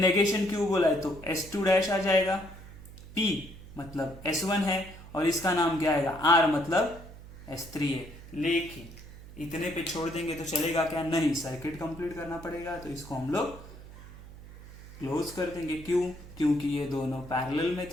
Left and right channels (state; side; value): noise; right; hum, 17 dB below the sound